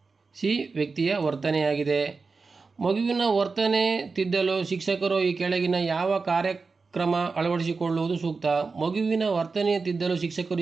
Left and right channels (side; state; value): left; quieter; 4.4 dB